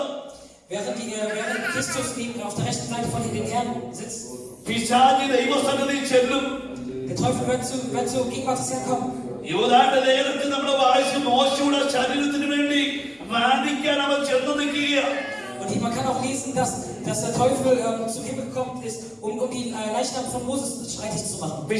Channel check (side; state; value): both; identical; correlation 1.00